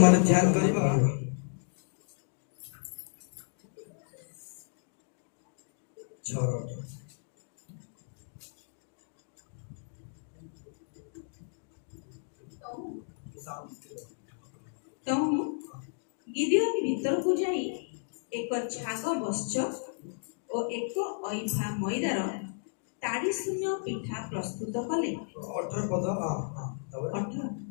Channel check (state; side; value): silent; right; digital silence